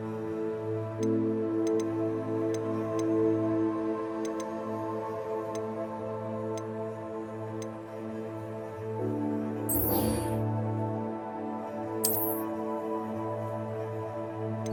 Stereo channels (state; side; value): identical; both; correlation 1.00